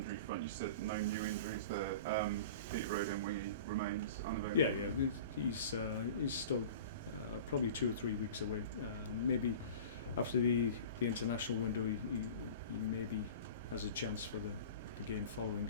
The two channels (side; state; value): both; inverted; correlation -0.38